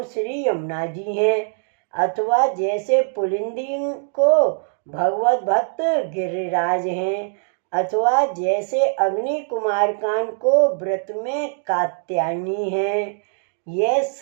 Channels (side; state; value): left; silent; digital silence